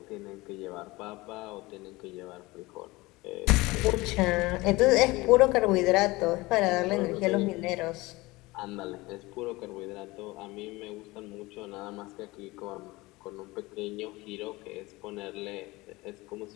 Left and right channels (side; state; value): right; quieter; 21.4 dB